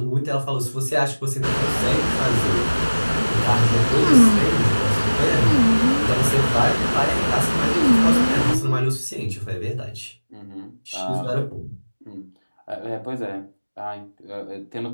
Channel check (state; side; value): inverted; both; correlation -1.00